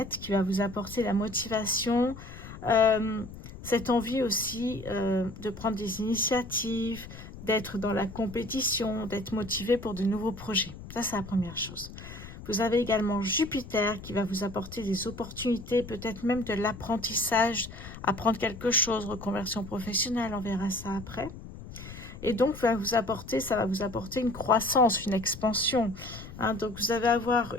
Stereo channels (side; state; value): left; noise; rumble, 14 dB below the sound